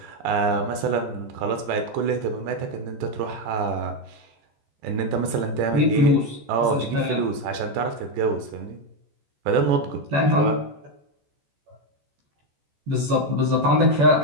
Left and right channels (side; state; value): left; late; 14 ms